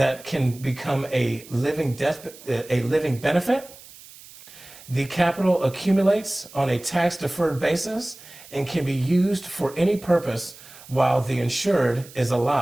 can become a living benefit. The capital accumulates on a tax-deferred basis and can be used for any purpose while the insured is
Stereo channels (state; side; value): noise; right; hiss, 20 dB below the sound